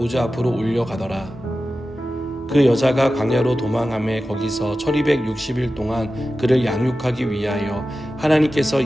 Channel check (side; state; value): both; normal; correlation 0.94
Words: 앞으로 올려가더라. 그 여자가 광야로 도망하며 거기서 1260일 동안 그를 양육하기 위하여 하나님께서